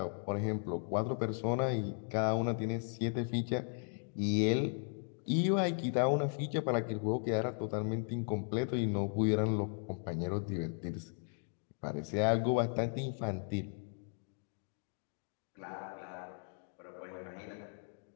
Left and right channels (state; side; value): silent; right; 53 dB below the other